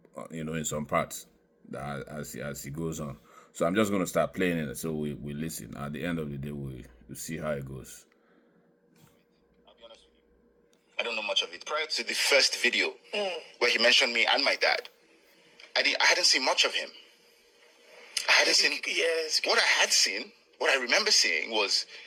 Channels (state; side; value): identical; both; correlation 1.00